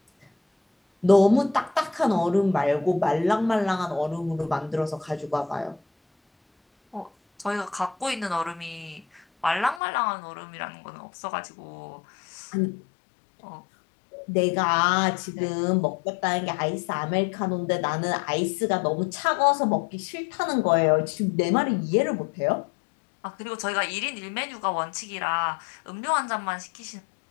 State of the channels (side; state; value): right; drops out; at 9.8 s